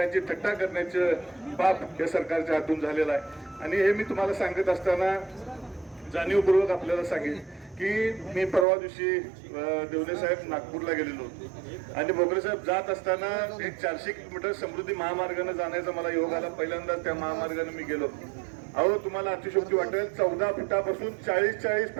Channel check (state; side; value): drops out; left; at 8.7 s